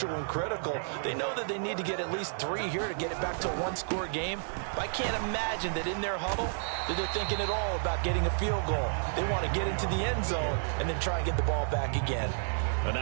and critical. They know that they need to get at least 3 here to get it back to a one-score game. But I can't imagine that in their huddle that they're thinking at all about getting a field goal. They want to get into the end zone and then try and get the ball back again. A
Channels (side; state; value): left; silent; digital silence